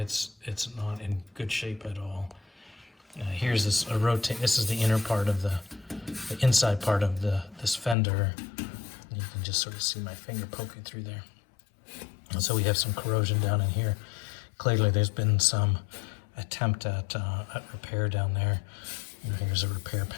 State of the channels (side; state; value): right; drops out; at 8.0 s